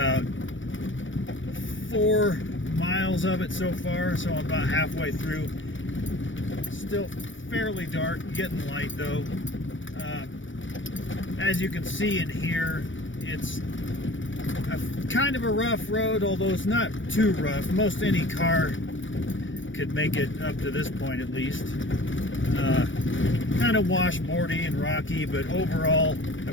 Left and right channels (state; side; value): late; right; 0.56 ms